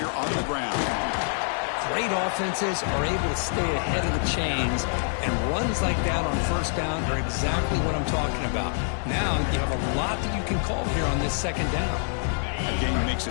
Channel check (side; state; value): right; silent; 61 dB below the other